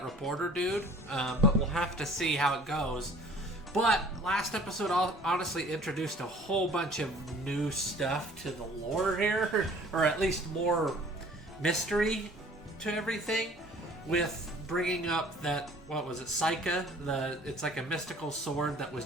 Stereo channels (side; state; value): both; normal; correlation 0.51